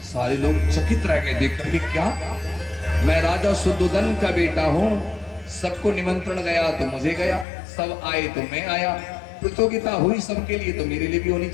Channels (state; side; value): drops out; right; at 7.5 s